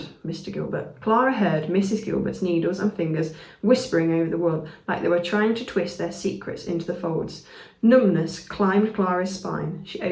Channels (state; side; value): identical; both; correlation 1.00